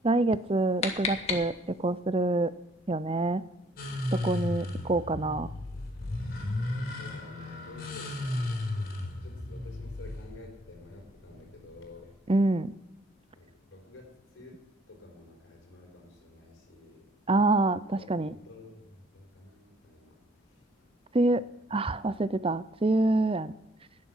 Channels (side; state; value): both; normal; correlation 0.63